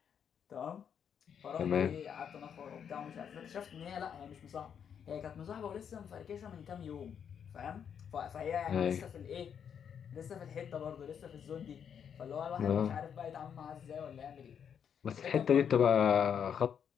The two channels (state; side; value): quieter; right; 7.9 dB